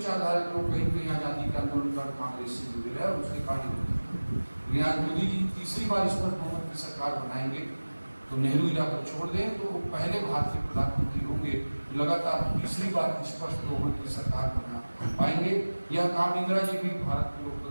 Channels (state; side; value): inverted; both; correlation -1.00